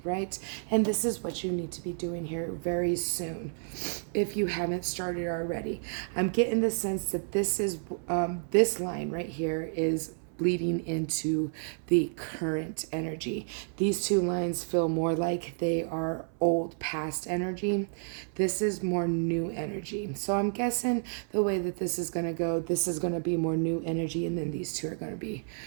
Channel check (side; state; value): left; silent; 57 dB below the other